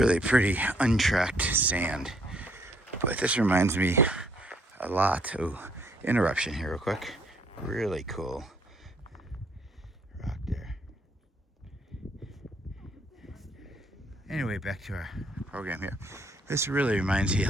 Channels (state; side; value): normal; both; correlation 0.66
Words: pretty untracked sand. But this reminds me a lot. Oh, interruption here real quick. Really cool rock there. Anyway, back to our program here. This really reminds me